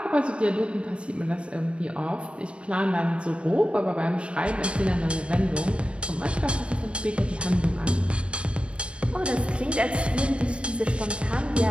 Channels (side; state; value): left; late; 0.059 ms